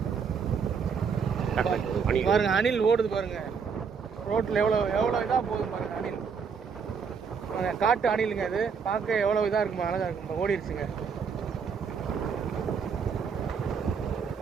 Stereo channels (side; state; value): left; quieter; 6.1 dB